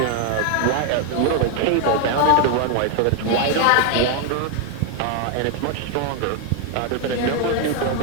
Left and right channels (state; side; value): different; both; correlation 0.01